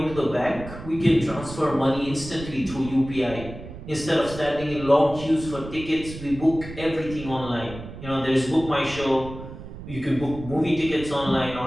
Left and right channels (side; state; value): right; noise; rumble, 12 dB below the sound